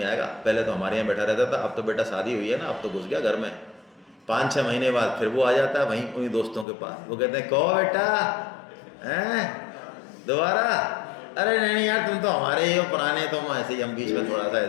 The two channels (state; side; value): drops out; right; at 6.7 s